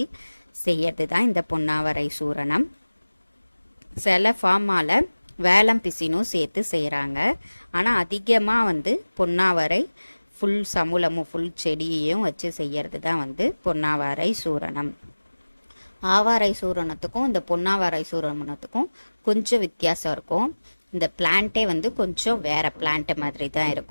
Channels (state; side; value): inverted; both; correlation -1.00